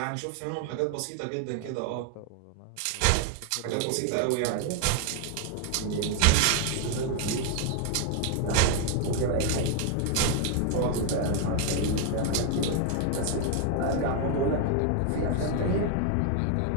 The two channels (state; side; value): different; both; correlation 0.01